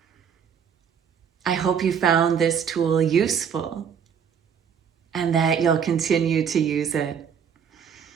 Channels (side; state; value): left; quieter; 7.5 dB